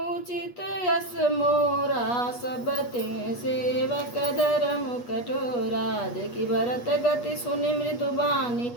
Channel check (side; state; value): right; late; 8.3 ms